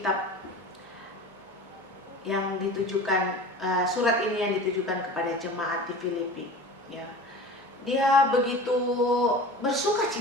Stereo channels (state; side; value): normal; both; correlation 0.37